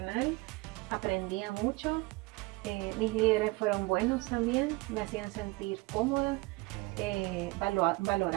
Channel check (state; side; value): quieter; left; 23.8 dB